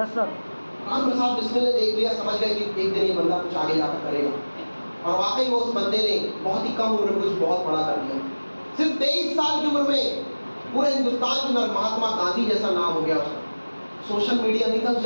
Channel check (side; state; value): both; inverted; correlation -1.00